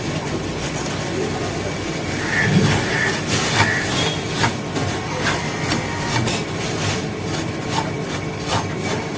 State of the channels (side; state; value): both; identical; correlation 1.00